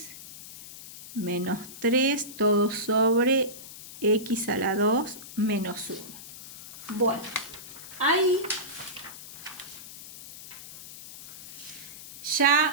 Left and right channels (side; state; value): left; noise; hiss, 15 dB below the sound